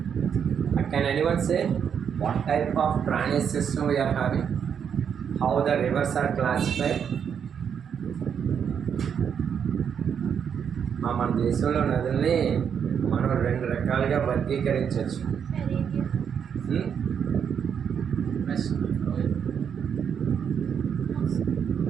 Can anyone say what type of drainage system we are having? How the rivers are classified? మన దేశంలో నదుల్ని మనం రెండు రకాలుగా వర్గీకరించవచ్చు.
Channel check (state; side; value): quieter; left; 7.6 dB